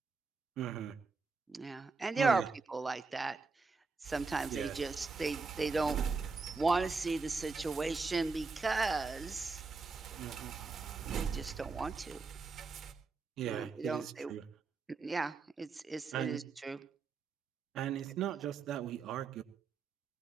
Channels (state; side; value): quieter; left; 4.4 dB